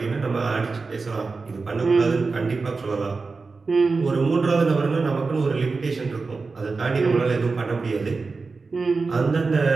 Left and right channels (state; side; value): quieter; left; 4.2 dB